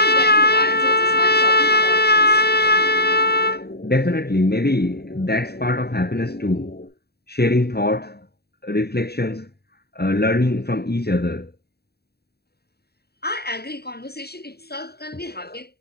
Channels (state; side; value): late; right; 0.47 ms